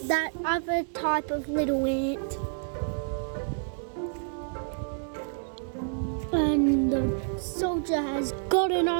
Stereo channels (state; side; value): silent; left; digital silence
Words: other type of little ant. And the soldier has gotten